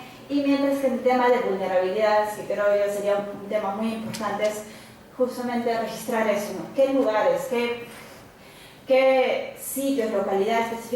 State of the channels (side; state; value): both; identical; correlation 1.00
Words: y mientras que en el tema de vulnerabilidades, que creo yo sería un tema muy importante, es justamente registrar eso, ¿no? ¿Qué lugares, qué sitios, localidades